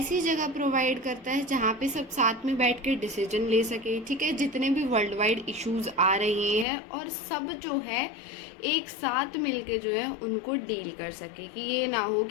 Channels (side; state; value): right; drops out; at 6.7 s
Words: जगह प्रोवाइड करता है जहाँ पे सब साथ में बैठ के डिसीजन ले सके, ठीक है, जितने भी वर्ल्ड वाइड इश्यूज आ रहे हैं और सब जो है एक साथ मिलके जो है उनको डील कर सके। कि ये ना हो